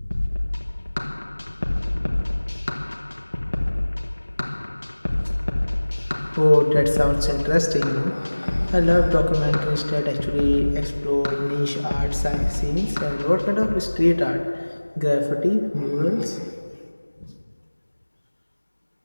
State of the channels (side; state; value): both; inverted; correlation -1.00